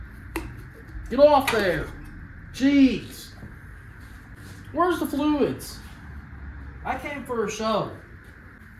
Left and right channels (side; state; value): both; identical; correlation 1.00